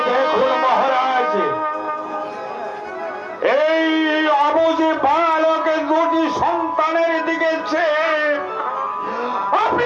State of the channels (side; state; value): both; identical; correlation 1.00